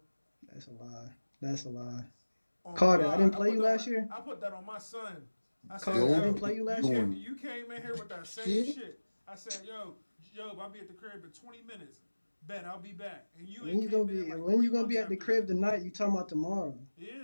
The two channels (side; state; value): both; inverted; correlation -1.00